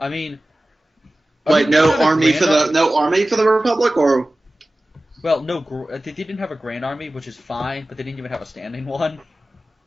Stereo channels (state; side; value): normal; both; correlation 0.96